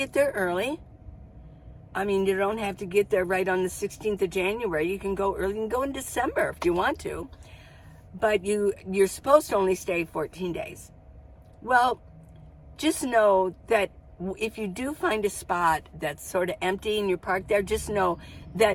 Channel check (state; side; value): identical; both; correlation 1.00